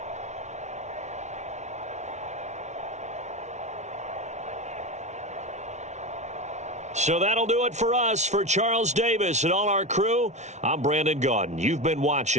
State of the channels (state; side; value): late; left; 0.33 ms